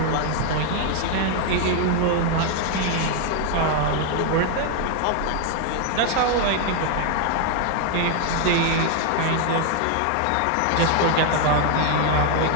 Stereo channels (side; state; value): both; different; correlation 0.00